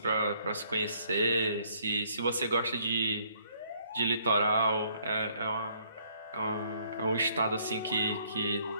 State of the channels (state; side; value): inverted; both; correlation -0.66